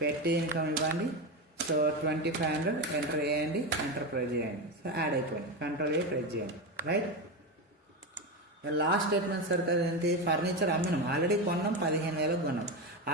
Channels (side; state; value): both; normal; correlation 0.16